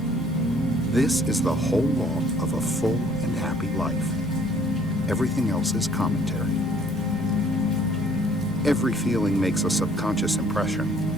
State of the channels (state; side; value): normal; both; correlation 0.59